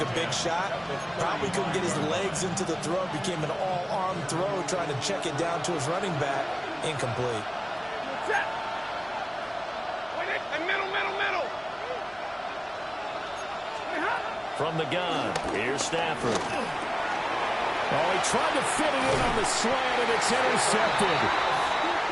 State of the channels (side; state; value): both; identical; correlation 1.00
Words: a big shot. Probably couldn't get his legs into the throw. Became an all-arm throw trying to check it down to his running back. Incomplete. Check. Wait, middle. From the gun, here's Stafford. Oh, he tried to fit it in on the slant, and it's intercepted.